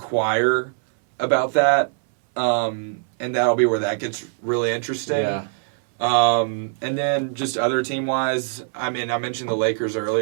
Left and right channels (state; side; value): silent; left; 62 dB below the other